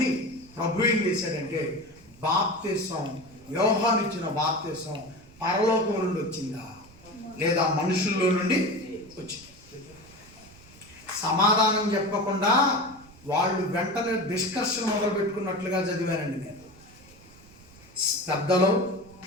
ప్రభు ఏం చేశాడంటే, బాప్తిసం, యోహాను ఇచ్చిన బాప్తిసం పరలోకం నుండి వచ్చిందా లేదా మనుషుల్లో నుండి వచ్చింది? సమాధానం చెప్పకుండా వాళ్ళు వెంటనే డిస్కషన్ మొదలు పెట్టుకున్నట్లుగా చదివానండి నేను. పెద్దలు,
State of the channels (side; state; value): right; noise; rumble, 23 dB below the sound